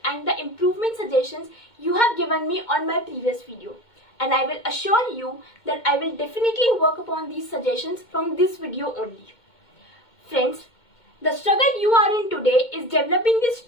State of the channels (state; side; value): late; right; 2.2 ms